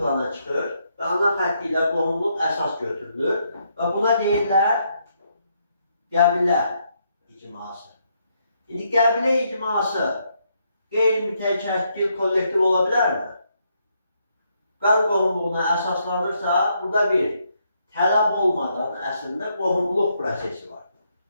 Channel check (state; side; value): inverted; both; correlation -0.76